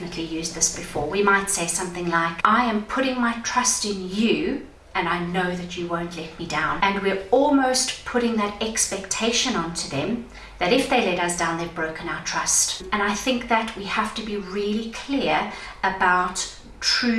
used this before. We might say something like, I am putting my trust in you, and I know that you won't let me down. And we're almost putting that expectation onto them that if they let us down, they've broken our trust. And I think that we have to be really clear about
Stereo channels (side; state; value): both; identical; correlation 1.00